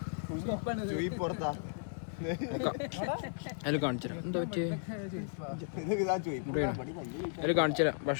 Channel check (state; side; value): silent; right; digital silence